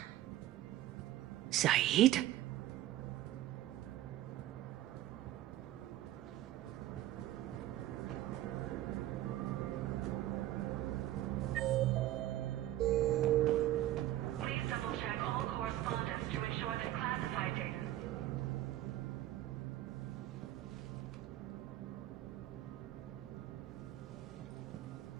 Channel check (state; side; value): quieter; left; 14.2 dB